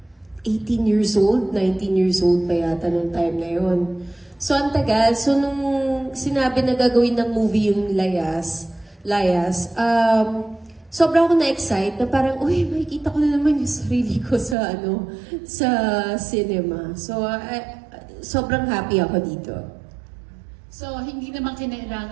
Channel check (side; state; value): left; drops out; at 14.6 s